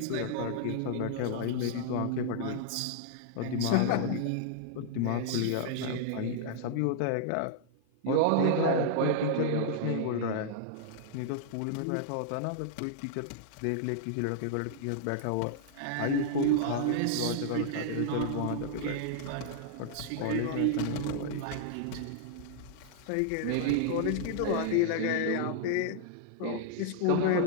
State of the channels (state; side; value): different; both; correlation -0.01